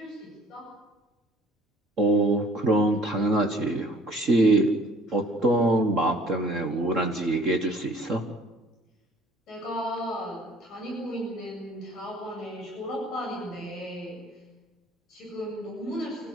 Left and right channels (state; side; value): normal; both; correlation 0.53